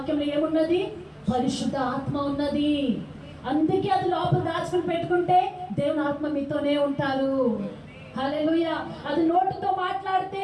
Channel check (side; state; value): both; identical; correlation 1.00